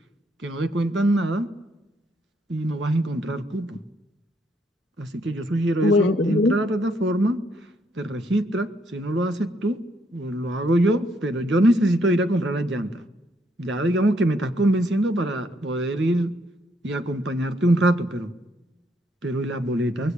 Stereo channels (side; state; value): both; normal; correlation 0.72